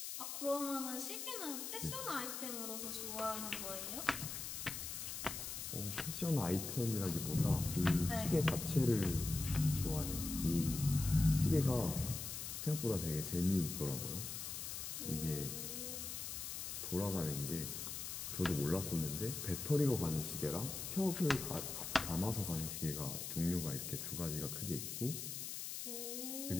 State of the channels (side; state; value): left; noise; hiss, 5 dB below the sound